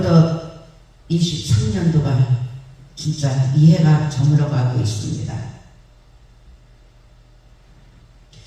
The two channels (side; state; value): both; identical; correlation 1.00